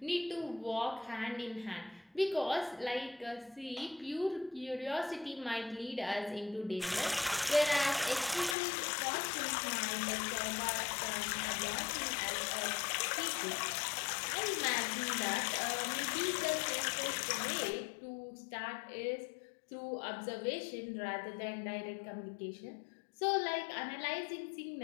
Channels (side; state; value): right; drops out; at 8.6 s